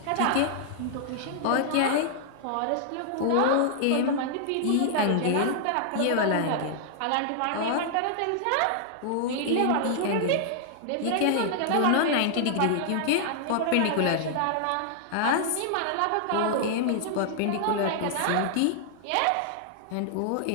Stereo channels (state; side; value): different; both; correlation -0.01